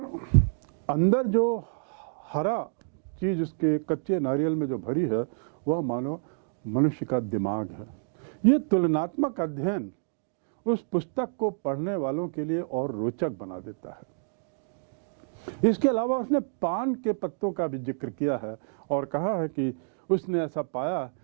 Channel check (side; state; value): left; silent; digital silence